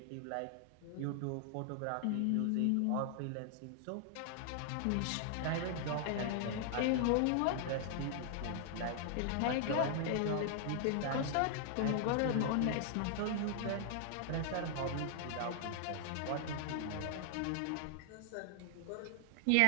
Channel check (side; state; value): both; different; correlation 0.00